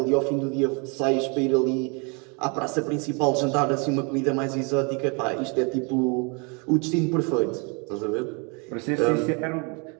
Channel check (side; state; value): left; quieter; 33.2 dB